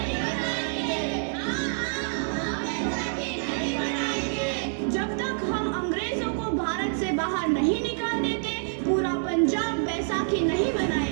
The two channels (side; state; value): left; silent; digital silence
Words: जब तक हम अंग्रेजों को भारत से बाहर नहीं निकाल देते, पूरा पंजाब बैसाखी नहीं